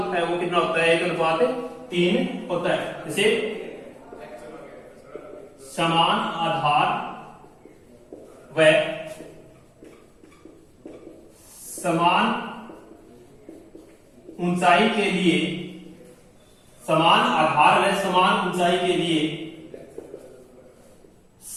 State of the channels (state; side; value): identical; both; correlation 1.00